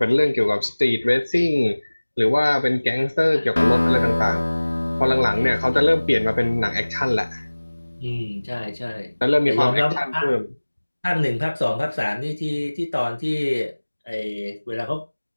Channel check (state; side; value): inverted; both; correlation -1.00